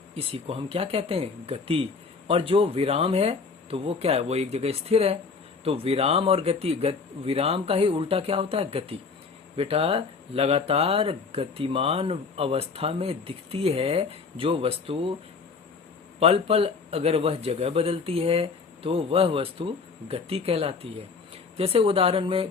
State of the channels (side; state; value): right; quieter; 4.9 dB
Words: इसी को हम क्या कहते हैं? गति। और जो विराम है तो वो क्या है? वो एक जगह स्थिर है। तो विराम और गति, विराम का ही उल्टा क्या होता है? गति। बेटा लगातार गतिमान अवस्था में दिखती है जो वस्तु, पल पल अगर वह जगह बदलती है तो वह वस्तु गति कहलाती है। जैसे उदाहरण में